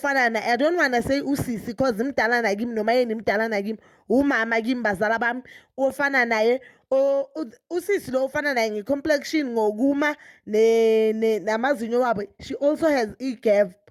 na I don't want to say usisi because mdala nakimi noMayeni mdala nakimi. Umama kimi bazala bami ofana naye usisi lo ofana naye ngecomplexion ngokuma namazinyo wabo. She also has e-gap.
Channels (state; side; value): identical; both; correlation 1.00